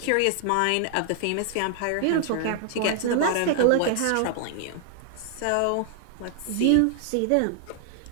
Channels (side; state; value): both; different; correlation 0.00